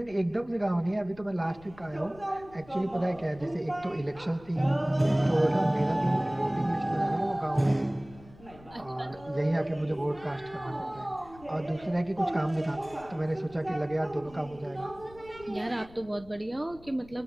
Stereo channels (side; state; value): left; noise; rumble, 21 dB below the sound